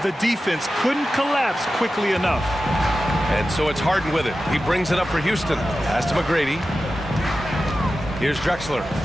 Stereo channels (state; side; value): normal; both; correlation 0.93